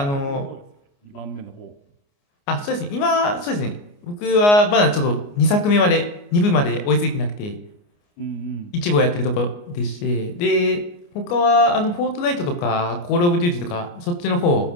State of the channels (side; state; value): right; late; 29 ms